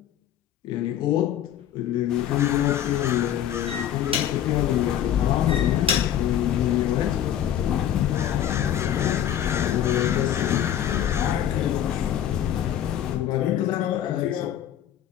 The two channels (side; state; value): right; quieter; 10.5 dB